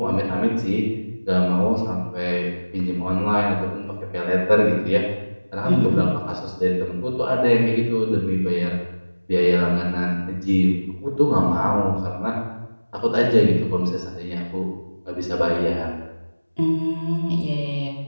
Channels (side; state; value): both; inverted; correlation -1.00